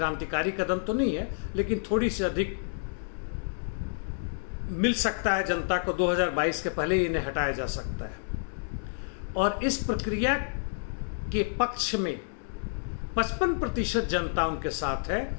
कदम तो नहीं है, लेकिन थोड़ी सी अधिक मिल सकता है जनता को। 2022 के पहले ही इन्हें हटाया जा सकता है। और इस प्रक्रिया के पक्ष में 55% जनता उनके साथ है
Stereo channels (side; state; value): right; silent; digital silence